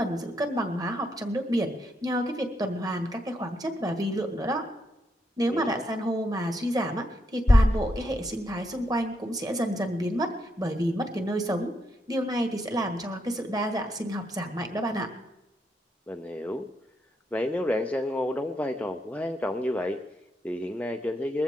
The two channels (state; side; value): normal; both; correlation 0.79